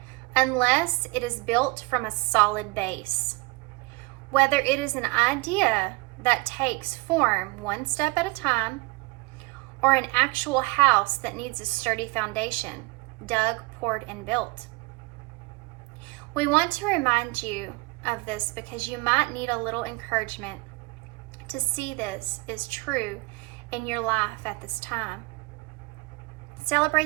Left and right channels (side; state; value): left; quieter; 25.6 dB